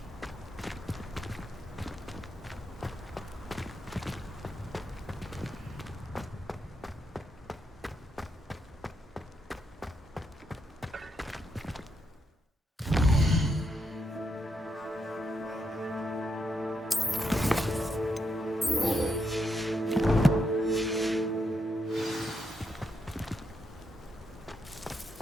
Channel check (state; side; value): normal; both; correlation 0.81